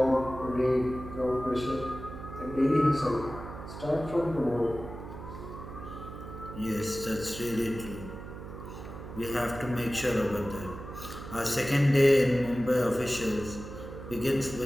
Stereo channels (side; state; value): right; noise; hum, 11 dB below the sound